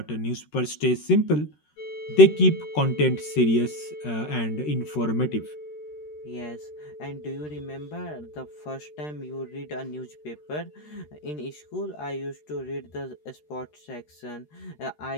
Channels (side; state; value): right; late; 13 ms